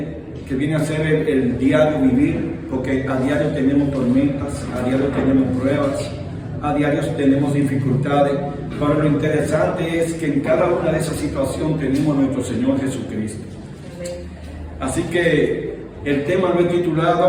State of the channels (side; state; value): both; identical; correlation 1.00